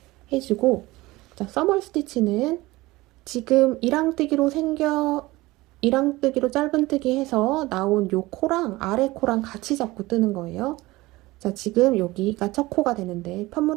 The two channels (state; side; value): quieter; left; 19.9 dB